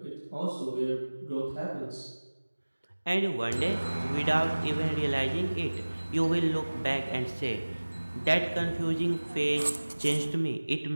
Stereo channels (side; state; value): both; inverted; correlation -1.00